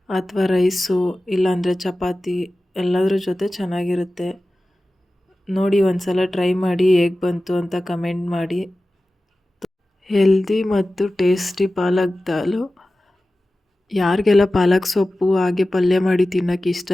ಅಥವಾ ರೈಸು, ಇಲ್ಲಾಂದರೆ ಚಪಾತಿ ಎಲ್ಲದ್ರ ಜೊತೆ ಚೆನ್ನಾಗಿರುತ್ತೆ. ನೋಡಿ, ಒಂದು ಸಲ ಟ್ರೈ ಮಾಡಿ, ಹೇಗೆ ಬಂತು ಅಂತ ಕಮೆಂಟ್ ಮಾಡಿ. ಹೆಲ್ದಿ ಮತ್ತು ಟೇಸ್ಟಿ ಪಾಲಕ್ ದಾಲು. ಯಾರಿಗೆಲ್ಲ ಪಾಲಕ್ ಸೊಪ್ಪು ಹಾಗೆ ಪಲ್ಯ ಮಾಡಿ ತಿನ್ನೋಕ್ಕೆ ಇಷ್ಟ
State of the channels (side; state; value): both; normal; correlation 0.95